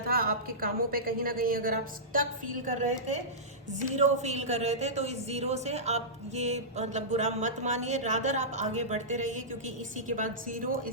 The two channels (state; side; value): normal; both; correlation -0.17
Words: आपके कामों पे, कहीं ना कहीं अगर आप स्टक फील कर रहे थे, जीरो फील कर रहे थे, तो इस जीरो से आप ये मतलब बुरा मत मानिए, रादर आप आगे बढ़ते रहिए, क्योंकि इसी के बाद zero